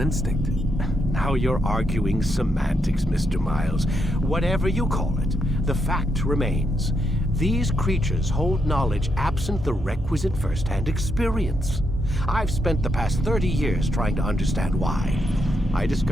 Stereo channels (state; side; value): normal; both; correlation 0.80